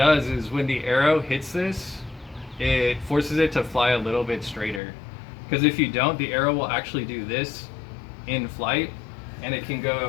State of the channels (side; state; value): right; drops out; at 4.8 s